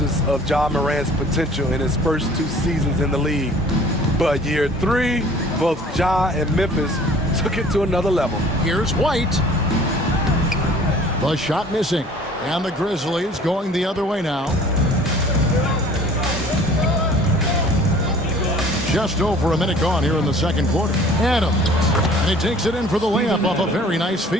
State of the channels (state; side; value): normal; both; correlation 0.50